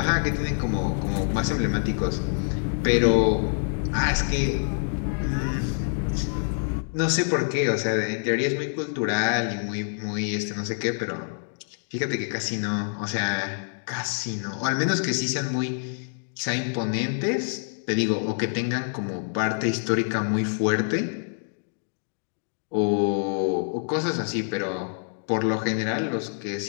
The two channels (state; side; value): silent; right; digital silence